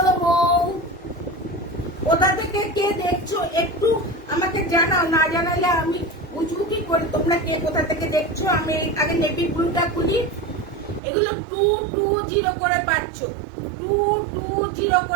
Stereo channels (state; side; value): drops out; left; at 11.0 s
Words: বউ, কোথা থেকে কে দেখছো একটু আমাকে জানাও, না জানালে আমি বুঝবো কি করে তোমরা কে কোথা থেকে দেখছো। আমি আগে নেভি ব্লুটা খুলি। এগুলো 220 করে পাচ্ছ, 220